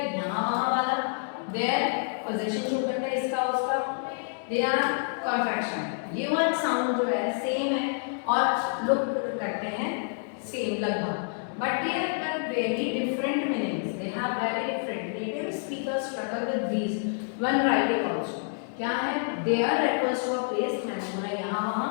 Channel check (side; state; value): right; silent; digital silence